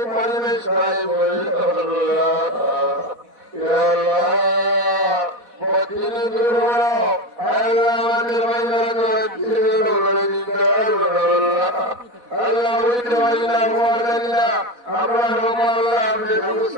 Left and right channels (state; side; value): late; left; 4.1 ms